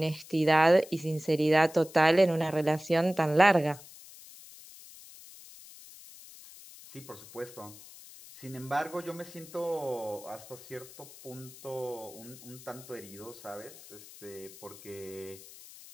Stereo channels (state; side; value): noise; left; hiss, 18 dB below the sound